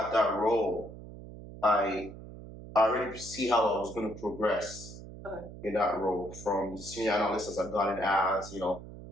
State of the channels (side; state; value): right; noise; hum, 14 dB below the sound